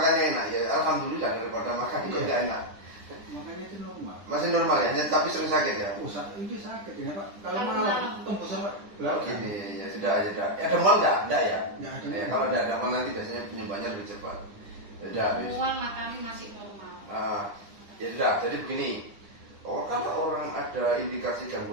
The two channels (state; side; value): late; left; 9.8 ms